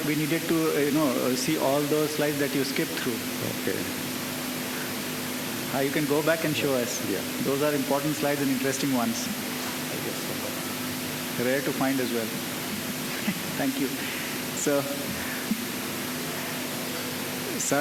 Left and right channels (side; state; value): both; identical; correlation 1.00